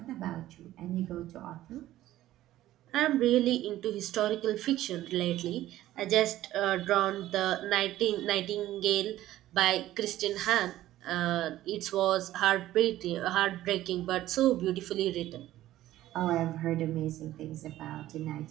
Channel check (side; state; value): left; quieter; 14.4 dB